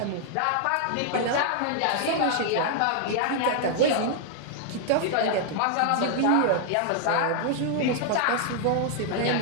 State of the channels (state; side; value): different; both; correlation 0.00